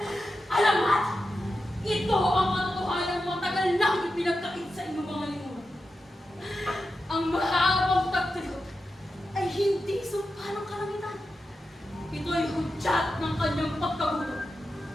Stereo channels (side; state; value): both; normal; correlation 0.90